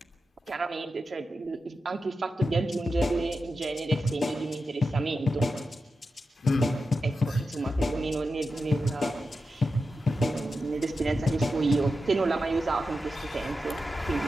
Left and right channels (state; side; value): normal; both; correlation 0.90